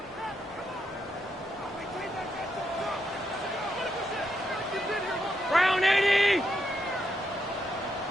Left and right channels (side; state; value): both; normal; correlation 0.80